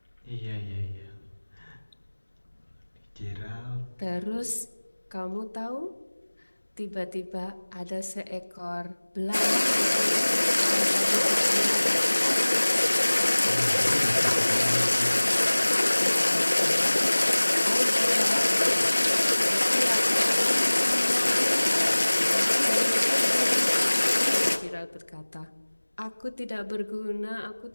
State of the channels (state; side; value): inverted; both; correlation -1.00